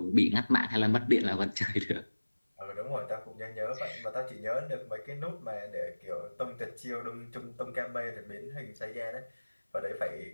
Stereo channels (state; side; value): inverted; both; correlation -1.00